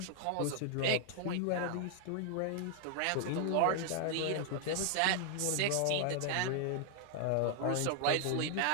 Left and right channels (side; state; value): both; different; correlation 0.00